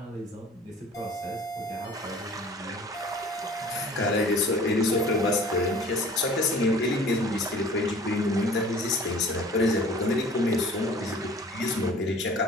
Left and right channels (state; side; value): normal; both; correlation 0.48